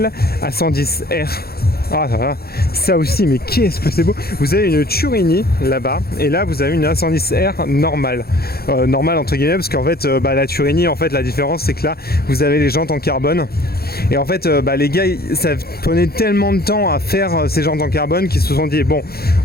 A110R. Ah ça aussi, mais qu'est-ce que c'est beau. Vous avez une Turini là-bas, et là vous avez une A110R normale, normale entre guillemets, parce qu'en fait la Turini, en fait la différence c'est que là vous avez les jantes en carbone, et en fait les gars ça prenait tellement de temps à faire ces jantes en carbone qu'ils se sont dit bon,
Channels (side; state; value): right; late; 0.45 ms